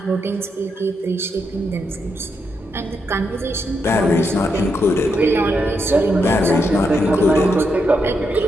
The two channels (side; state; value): both; normal; correlation 0.81